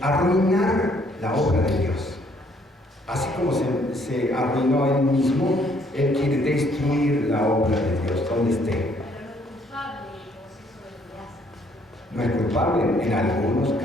arruinar la obra de Dios. Así como se arruinó a él mismo, él quiere destruir la obra de Dios, donde esté. No es culpable en algunos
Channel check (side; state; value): both; normal; correlation 0.65